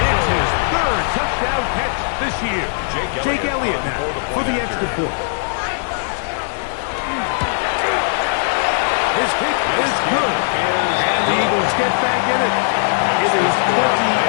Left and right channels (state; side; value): silent; right; digital silence